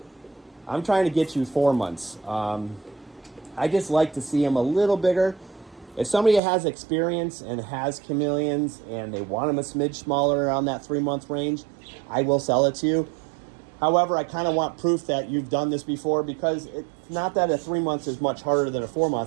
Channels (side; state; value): left; drops out; at 6.4 s